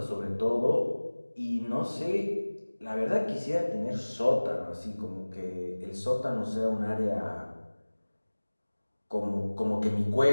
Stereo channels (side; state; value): both; inverted; correlation -1.00